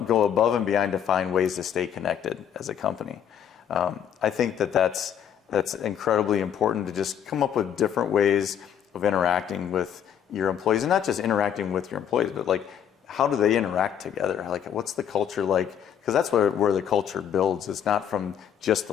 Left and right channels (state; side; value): quieter; right; 9.0 dB